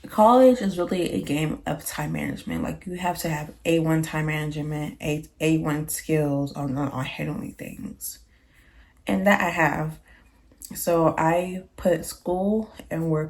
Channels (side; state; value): both; identical; correlation 1.00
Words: college is really a game of time management. Like you have to have A1 time management, A1 skills on handling things. And that I have. So I put school and